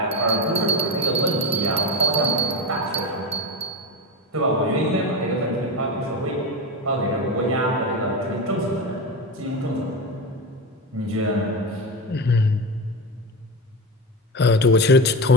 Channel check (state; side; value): normal; both; correlation 0.20